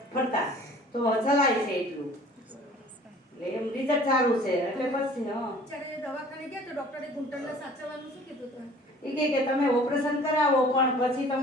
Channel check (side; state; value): both; normal; correlation 0.49